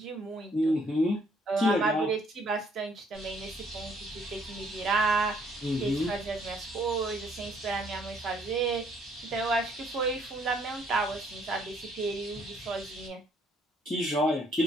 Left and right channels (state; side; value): normal; both; correlation 0.66